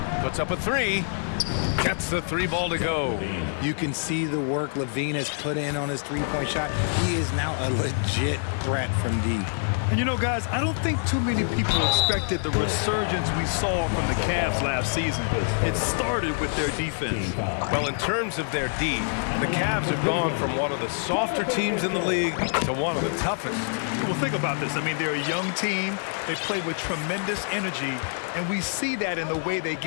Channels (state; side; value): silent; right; digital silence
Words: Puts up a 3. Gets the 3 ball to go. You can see the work Levine has put in on his three-point shot. He is now a legit threat from deep. And you know, guys, I don't think too many people expected the resurgence we saw from the Cavs last season. It started with their defense. Well, in terms of their D, the Cavs have gone from one of the softer teams in the league to one of the toughest. Well, think about this. I mean, they're a young team. They play with tremendous energy, and we see that in the way they